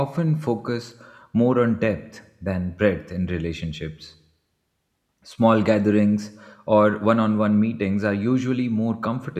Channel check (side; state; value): both; identical; correlation 1.00